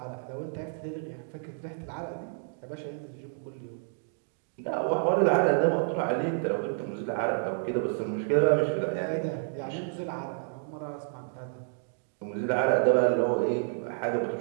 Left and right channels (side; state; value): left; silent; digital silence